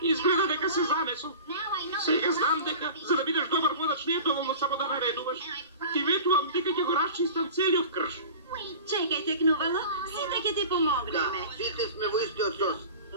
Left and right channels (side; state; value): both; inverted; correlation -0.38